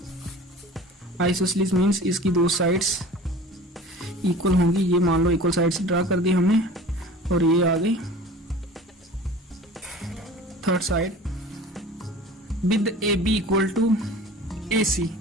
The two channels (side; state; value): both; normal; correlation 0.41